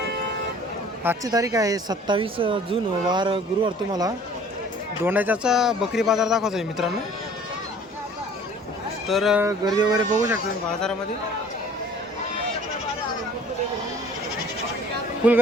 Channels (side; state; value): both; normal; correlation 0.50